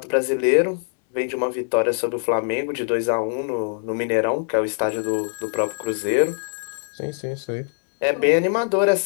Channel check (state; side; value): silent; right; digital silence